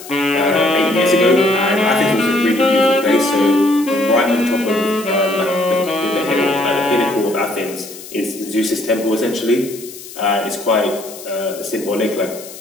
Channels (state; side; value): noise; left; hiss, 15 dB below the sound